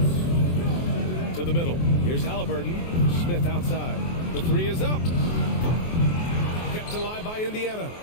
To the middle. Here's Halliburton. Smith outside. The 3 is up. Kept alive by Indiana.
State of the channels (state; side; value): late; right; 23 ms